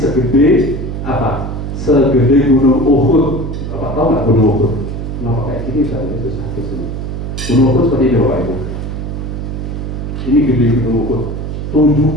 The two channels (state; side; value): noise; right; hum, 5 dB below the sound